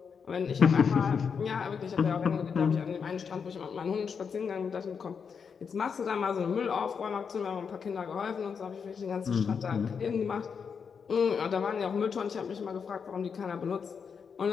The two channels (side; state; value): right; quieter; 6.3 dB